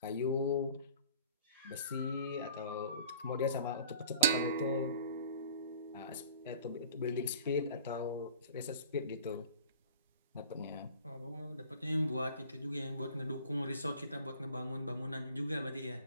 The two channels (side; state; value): both; inverted; correlation -0.46